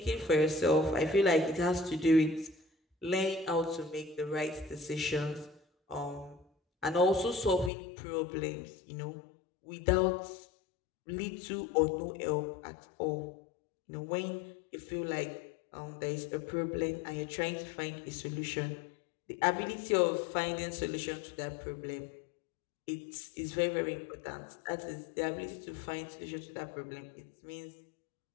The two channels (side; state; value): right; drops out; at 7.7 s